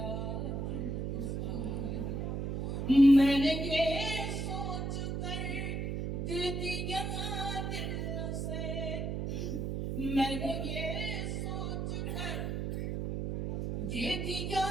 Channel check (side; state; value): right; noise; hum, 2 dB below the sound